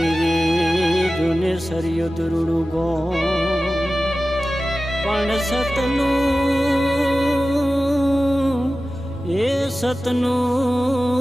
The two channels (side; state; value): both; normal; correlation 0.95